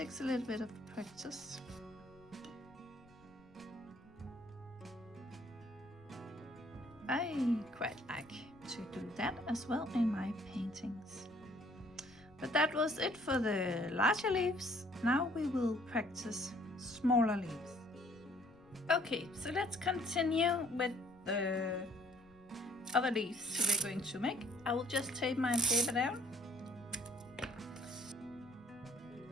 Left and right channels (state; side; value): noise; left; rumble, 27 dB below the sound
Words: a little bit of practice. I quite like to do that as well in my paintings. But that was it for the larger leaves. Now we will practice smaller leaves. Okay, so let's continue with the other leaves we're going to make. I will just tape my paper down.